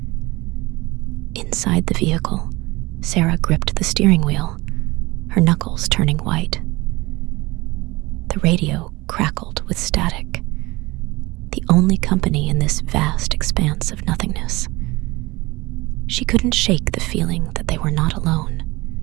Inside the vehicle, Sarah gripped the steering wheel, her knuckles turning white. The radio crackled with static, the only company in this vast expanse of nothingness. She couldn't shake the feeling that they were not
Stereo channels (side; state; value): left; quieter; 21.4 dB